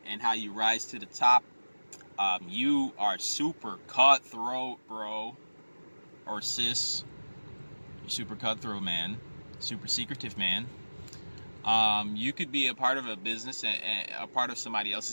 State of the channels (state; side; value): inverted; both; correlation -1.00